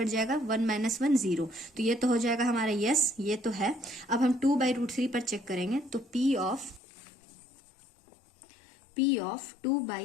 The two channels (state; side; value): drops out; right; at 6.8 s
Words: जाएगा, 1 - 1 0, तो ये तो हो जाएगा हमारा यस, ये तो है। अब हम 2 बाई √3 पर चेक करेंगे, तो p ऑफ 2